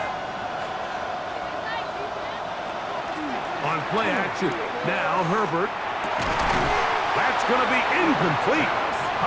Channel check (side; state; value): both; identical; correlation 1.00